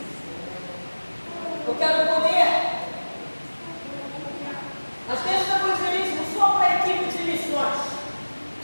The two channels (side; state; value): both; inverted; correlation -1.00